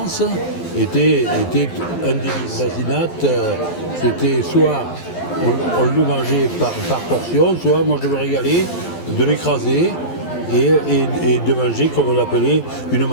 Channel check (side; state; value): right; late; 12 ms